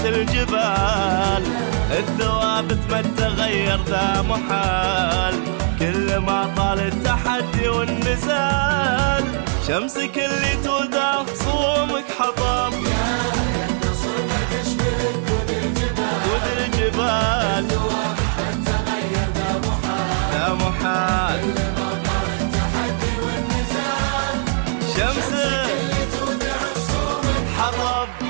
الجبال، الثوابت ما تغير ذا محال. كل ما طال التحدي والنزال، شمسك اللي تودع خصومك حطب. يا النصر ما تشبهك بود الجبال، الثوابت ما تغير ذا محال. كل ما طال التحدي والنزال، شمسك اللي تودع خصومك حطب.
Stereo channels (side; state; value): left; silent; digital silence